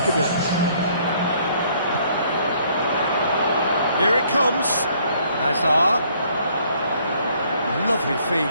a bit. Here it comes. Hazard. Lovely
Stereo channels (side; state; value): both; inverted; correlation -0.63